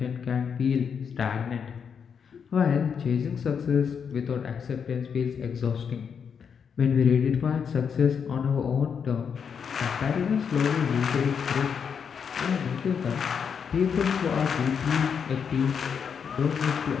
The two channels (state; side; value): quieter; right; 6.9 dB